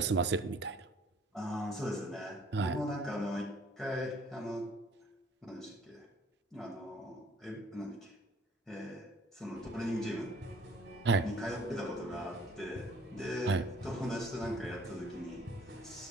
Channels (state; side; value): normal; both; correlation 0.56